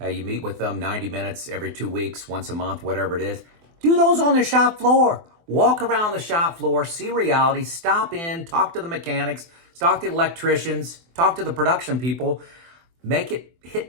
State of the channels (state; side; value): late; left; 24 ms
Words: You meet with them 90 minutes every 2 weeks, once a month, whatever it is. Do those on the shop floor. Walk around the shop floor, see reality, stop in, talk to the mechanics, talk to the electricians, talk to the production people. Make it